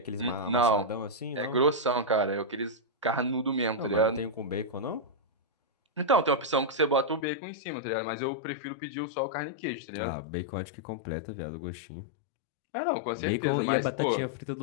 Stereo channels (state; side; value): drops out; right; at 7.2 s